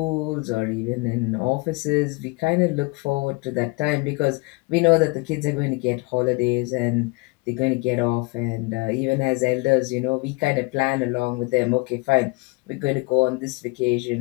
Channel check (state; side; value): quieter; right; 26.3 dB